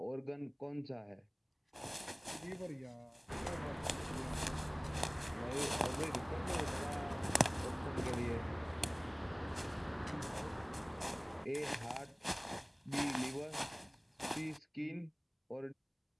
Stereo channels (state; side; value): identical; both; correlation 1.00